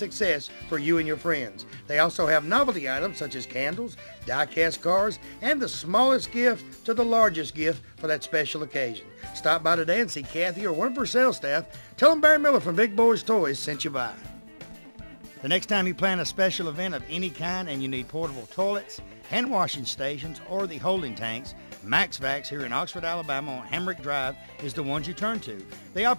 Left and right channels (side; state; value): both; inverted; correlation -1.00